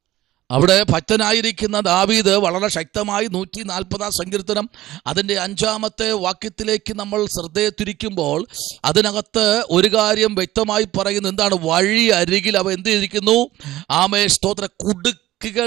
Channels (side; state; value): left; quieter; 15.7 dB